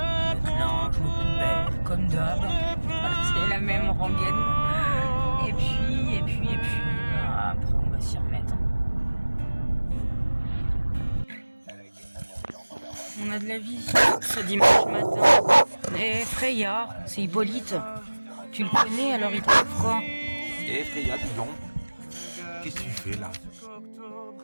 linge, le poubelle, comme d'hab. C'est la même rengaine. Et puis, après, on va s'y remettre. On a de la visite ce dimanche matin. Et Freya, c'est Hippolyte. Tu le connais, alors il trouve quoi? Et Freya, dis donc, qu'est-ce que tu fais là?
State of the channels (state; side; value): inverted; both; correlation -1.00